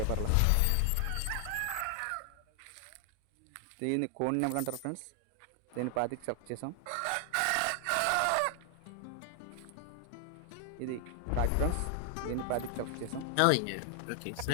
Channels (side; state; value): both; different; correlation 0.00